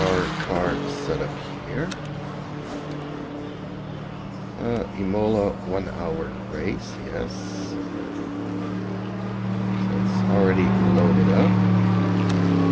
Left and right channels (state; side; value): identical; both; correlation 1.00